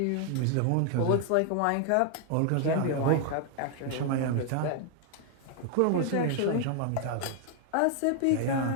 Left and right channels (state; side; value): different; both; correlation 0.00